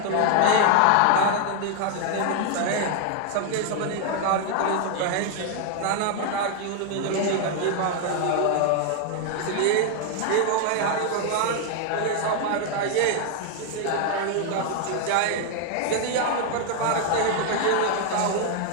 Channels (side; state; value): both; different; correlation 0.00